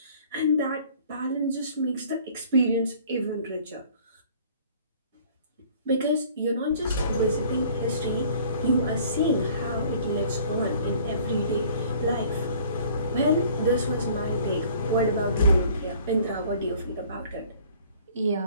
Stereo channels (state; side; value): inverted; both; correlation -0.53